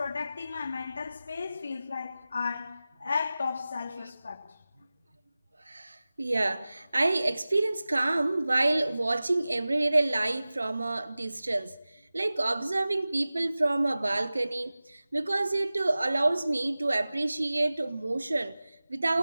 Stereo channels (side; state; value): both; inverted; correlation -0.97